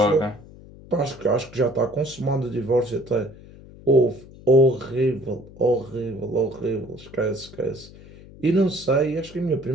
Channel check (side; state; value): left; noise; hum, 20 dB below the sound